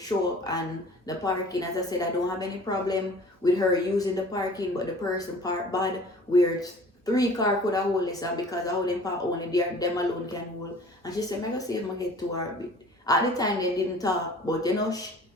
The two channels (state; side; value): normal; both; correlation 0.47